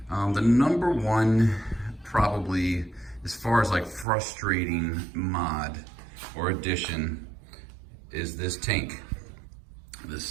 The number one, probably as far as like frustrating mod or addition, is this tank. This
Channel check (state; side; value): drops out; left; at 4.0 s